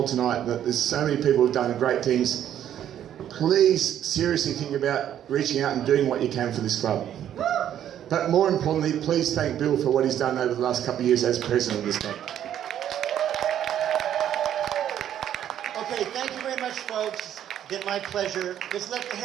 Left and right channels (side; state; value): left; quieter; 10.6 dB